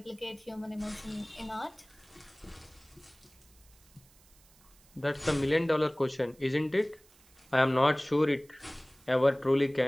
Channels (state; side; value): noise; right; hiss, 28 dB below the sound